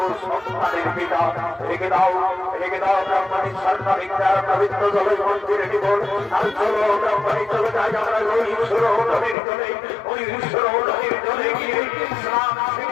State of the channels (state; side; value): drops out; right; at 9.3 s